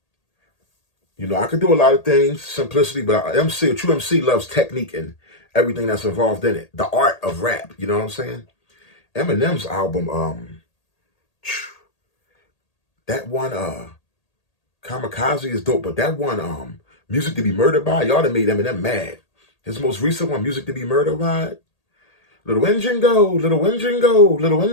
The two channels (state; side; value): late; right; 1.8 ms